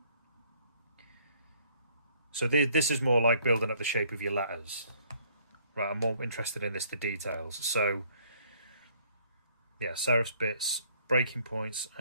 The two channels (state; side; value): inverted; both; correlation -0.62